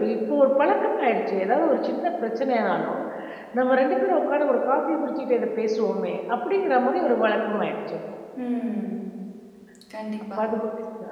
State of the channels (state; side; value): identical; both; correlation 1.00